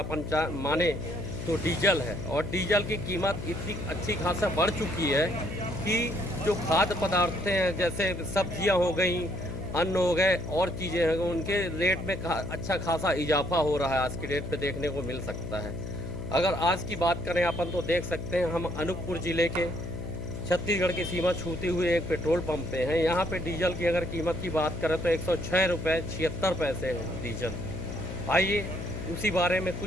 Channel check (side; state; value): left; noise; hum, 7 dB below the sound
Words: माने तो डीजल है। और डीजल की कीमत इतनी अच्छी खासा बढ़ चुकी है कि जो खाद्य पदार्थ हैं, जैसे सब्जियां हो गई, अन्न हो गए और चीज़ें हैं, उनके रेट में अच्छा खासा इजाफा हो रहा है। आज की डेट पे देखने को मिल सकता है। अगर आज की बात करें अपन तो देख सकते हैं हम अनूपपुर ज़िले के छत्तीसगढ़ की सीमा छूते हुए एक पेट्रोल पंप पे हैं। यहाँ पे डीजल की अगर कीमत की बात करें तो 106 रुपये 76 पैसे है डीजल। आइए उसी बारे में